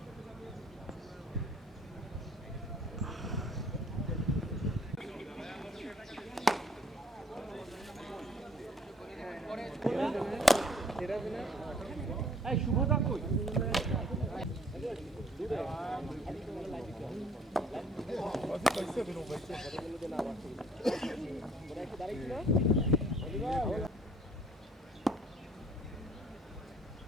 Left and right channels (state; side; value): normal; both; correlation 0.57